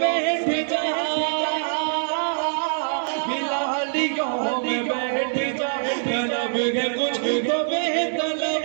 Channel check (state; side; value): silent; left; digital silence